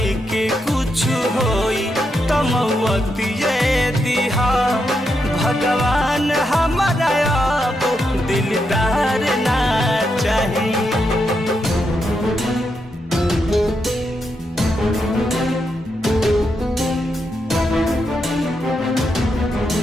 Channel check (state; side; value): normal; both; correlation 0.83